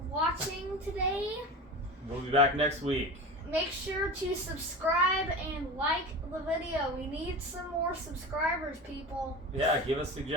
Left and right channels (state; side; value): normal; both; correlation 0.30